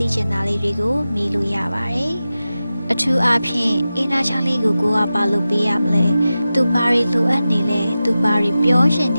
ိချင်တာလေးတွေကိုမေးလို့ရပါတယ်အထူးအားဖြင့်အင်နာချန်လေးကိုကိုကဘာလုပ်ပေးရမလဲသူဘာတွေလိုအပ်နေလဲသူဘာတွေပြောရှင်န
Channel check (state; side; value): inverted; both; correlation -0.94